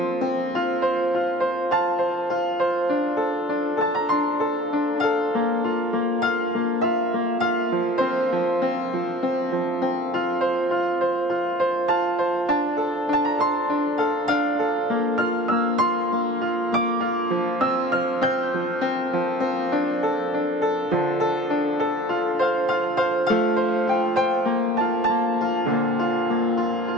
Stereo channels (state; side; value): normal; both; correlation 0.45